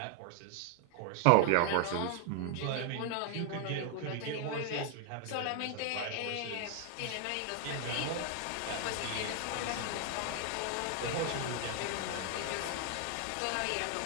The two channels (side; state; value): both; different; correlation 0.00